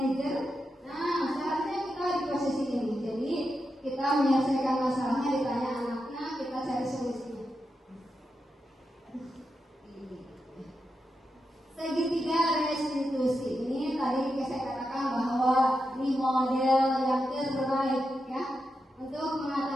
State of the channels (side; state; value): both; normal; correlation 0.87